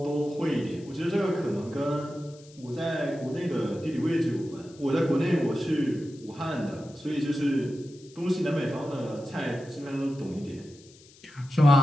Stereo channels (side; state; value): left; noise; hiss, 25 dB below the sound